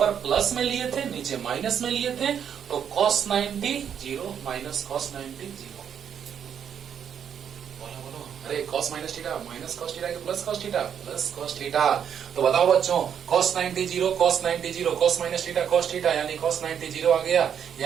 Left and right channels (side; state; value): left; quieter; 8.4 dB